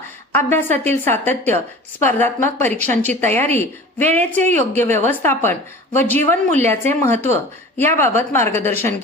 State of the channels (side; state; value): both; normal; correlation 0.39